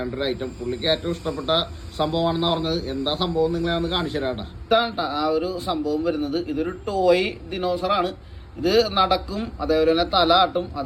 ഒരു ഐറ്റം. പുള്ളിക്ക് ഏറ്റവും ഇഷ്ടപ്പെട്ട സംഭവമാണെന്ന് പറഞ്ഞത്. എന്താ സംഭവം നിങ്ങളെ ഒന്ന് കാണിച്ചു തരാം. ഇതാണ് ആ ഒരു സംഭവം വരുന്നത്. ഇതൊരു ടോയ് ദിനോസറാണ്. ഇത് നടക്കും, അതേപോലെ തന്നെ തല ആട്ടും,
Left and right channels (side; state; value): both; identical; correlation 1.00